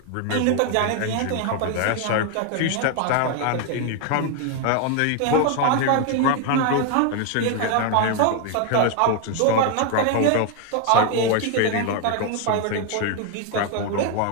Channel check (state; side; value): different; both; correlation 0.01